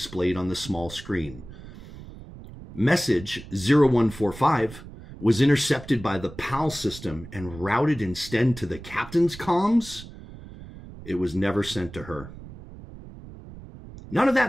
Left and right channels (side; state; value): right; noise; rumble, 16 dB below the sound